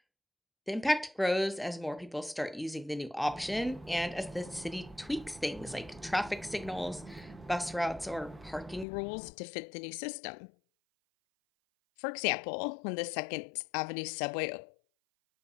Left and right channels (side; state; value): right; drops out; at 8.8 s